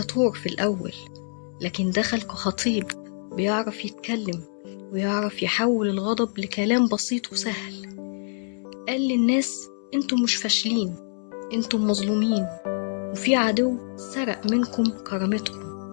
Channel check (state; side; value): silent; right; digital silence